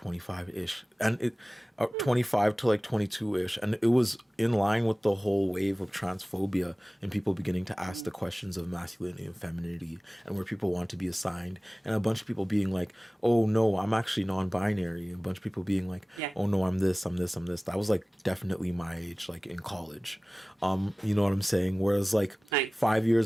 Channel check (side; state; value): both; normal; correlation 0.98